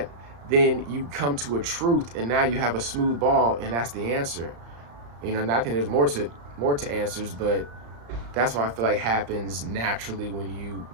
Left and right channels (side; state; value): left; late; 35 ms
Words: then you come to a truth, and now you have a smooth ball, and that's the answer. And I think there's more to answers, but that's what I feel like happens naturally when you